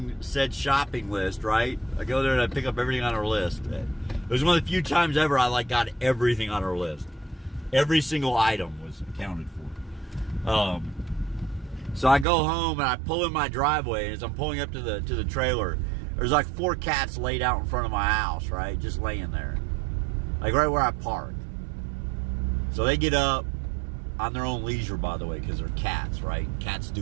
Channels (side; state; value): left; drops out; at 12.2 s